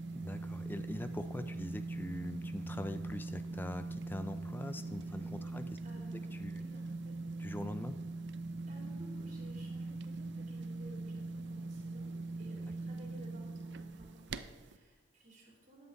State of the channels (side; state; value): both; normal; correlation 0.89